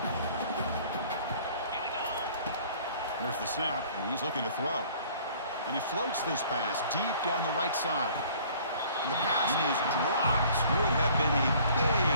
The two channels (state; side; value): inverted; both; correlation -0.53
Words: There's the snap, and he's looking to throw. And he floats this pass deep down the right side. And the pass is dropped. Would have been a